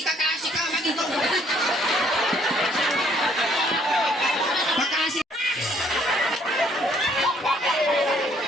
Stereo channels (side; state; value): both; normal; correlation 0.64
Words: kakaasi ka, magigaw. Makaasi.